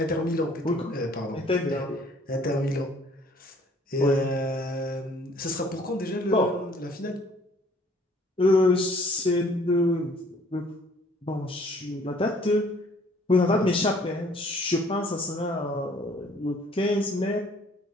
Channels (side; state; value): both; normal; correlation 0.58